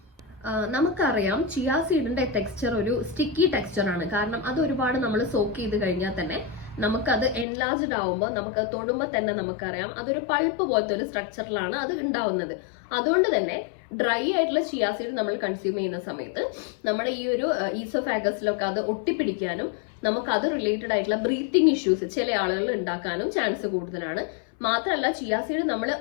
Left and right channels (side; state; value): right; drops out; at 7.5 s